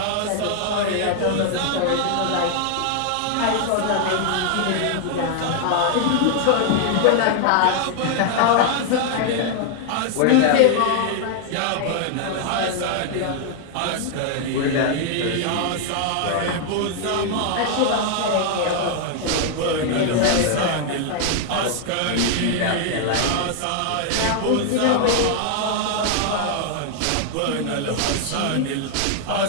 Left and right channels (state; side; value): different; both; correlation 0.00